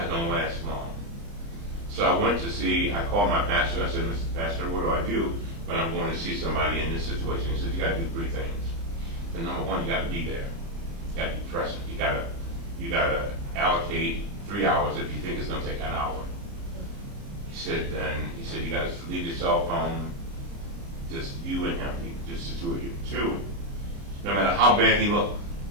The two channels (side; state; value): left; late; 30 ms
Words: going to last long." So I called my pastor. I said, "Mr. Pastor, what do I do when I'm going to see somebody in this situation?" He said, "You got to do three things. And number one, you got to be there. You got to be present. You got to allocate 3 hours if you think it's going to take an hour." He said, "You got to leave your cell phone, just you and him, just the two of you. Two, no matter how bad he looked,